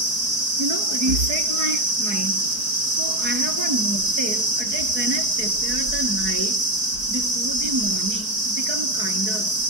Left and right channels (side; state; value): left; late; 4.6 ms